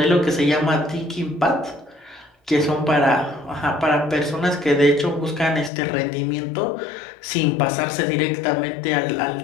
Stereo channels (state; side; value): drops out; right; at 5.7 s